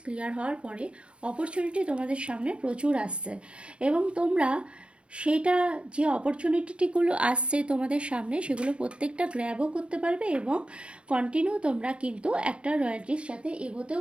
ক্লিয়ার হওয়ার পরে অপরচুনিটি তোমাদের সামনে প্রচুর আসছে, এবং তোমরা সেটা যে অপরচুনিটিগুলো আসছে তোমাদের সামনে সেগুলো প্রত্যেকটা গ্র্যাবও করতে পারবে, এবং কন্টিনিউ তোমরা কিন্তু একটা রয়্যালটির সাথে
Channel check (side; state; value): left; late; 0.059 ms